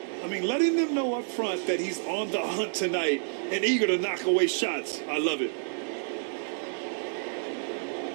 I mean, letting them know up front that he's on the hunt tonight and eager to knock away shots. I love it.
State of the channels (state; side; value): silent; left; digital silence